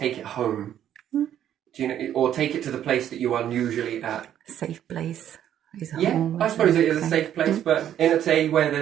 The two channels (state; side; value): quieter; left; 10.6 dB